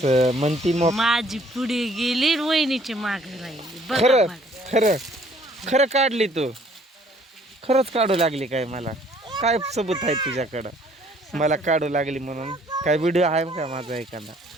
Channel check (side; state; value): both; normal; correlation 0.60